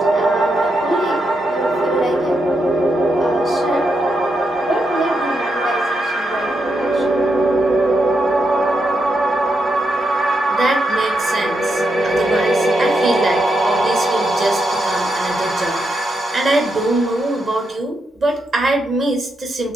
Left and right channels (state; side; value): normal; both; correlation 0.83